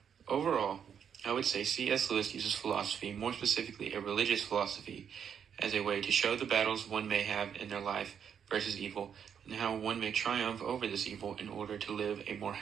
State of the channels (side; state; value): left; quieter; 7.9 dB